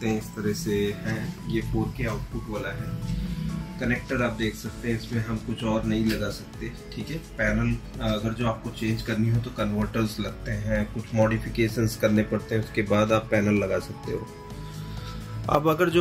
हैं इस तरह से है। ये 4K आउटपुट वाला है। कनेक्टर आप देख सकते हैं, इसमें हम कुछ और नहीं लगा सकते। ठीक है, पैनल अगर जो आपको चेंज करनी हो तो कन्वर्टर्स लगते हैं, कुछ मॉडिफिकेशंस करने पड़ते हैं, उसके बाद आप पैनल लगा सकते हो। अब अगर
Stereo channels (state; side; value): identical; both; correlation 1.00